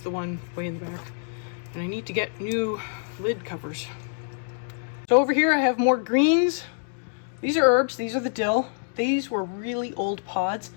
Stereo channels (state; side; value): silent; right; 61 dB below the other